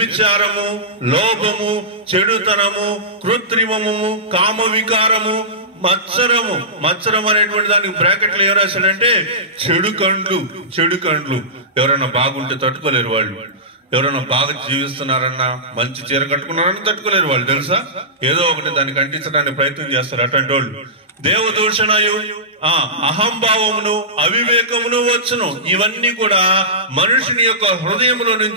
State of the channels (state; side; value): normal; both; correlation -0.19